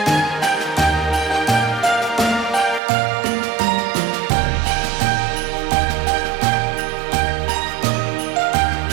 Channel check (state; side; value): drops out; left; at 2.8 s